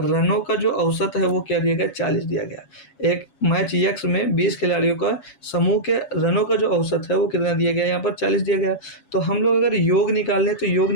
का जो औसत है वो क्या दिया गया, 40 दिया गया। एक मैच यक्स में 20 खिलाड़ियों का समूह के रनों का जो औसत है वो कितना दिया गया, यहाँ पर 40 दिया गया। तो हम लोग अगर योग निकाल लें तो योग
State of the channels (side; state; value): right; late; 7.2 ms